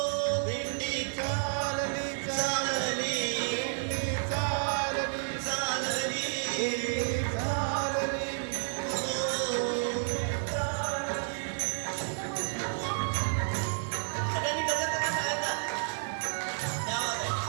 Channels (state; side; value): silent; left; digital silence